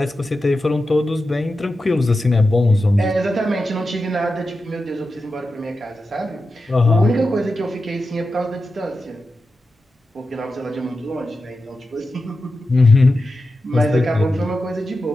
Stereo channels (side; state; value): both; normal; correlation 0.91